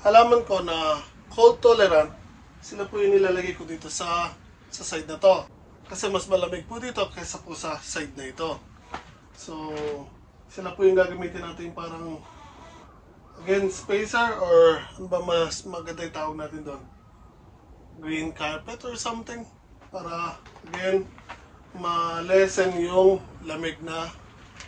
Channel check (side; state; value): both; identical; correlation 1.00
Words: halaman ko na cold tolerant, sila po yung nilalagay ko dito sa side na to. Kasi mas malamig po dito kaysa po sa side na ito. So, sila po yung gagamitin natin parang again, spacer or ano ba mas maganda yung tawag natin doon? Green carpet or something para again ma-lessen yung lamig na